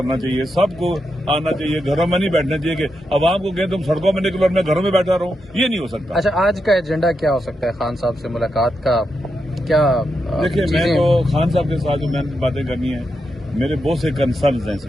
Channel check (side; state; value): both; normal; correlation 0.85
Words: چاہیے، سب کو آنا چاہیے، گھروں میں نہیں بیٹھنا چاہیے کہ عوام کو کہیں تم سڑکوں میں نکلو اور میں گھروں میں بیٹھا رہوں، یہ نہیں ہو سکتا۔ اچھا، آج کا ایجنڈا کیا ہو سکتا ہے خان صاحب سے ملاقات کا؟ کیا دیکھیے، میں تو خان صاحب کے ساتھ جو میں نے باتیں کرنی ہیں، میرے بہت سے کنسرنز ہیں اس